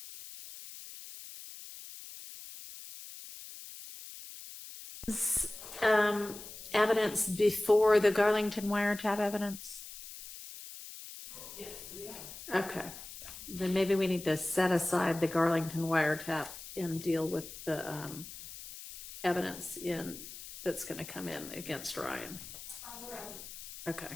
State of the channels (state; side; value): noise; left; hiss, 13 dB below the sound